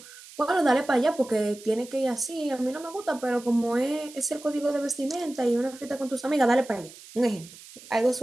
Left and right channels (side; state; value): right; noise; hiss, 19 dB below the sound